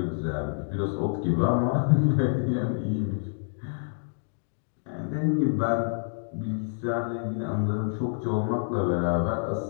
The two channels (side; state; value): right; silent; digital silence